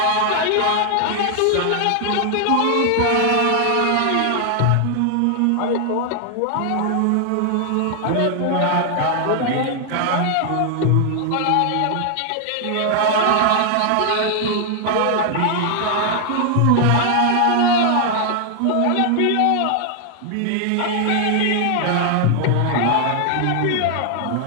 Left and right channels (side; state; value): both; different; correlation 0.00